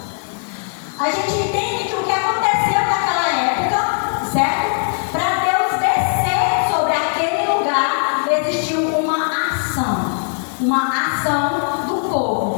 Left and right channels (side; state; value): right; silent; 58 dB below the other